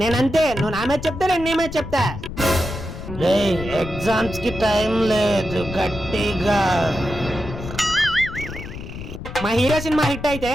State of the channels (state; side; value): noise; left; rumble, 10 dB below the sound